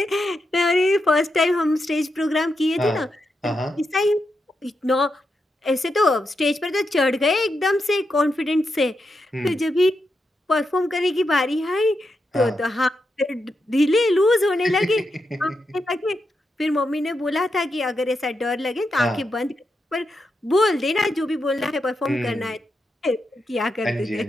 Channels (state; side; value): normal; both; correlation 0.85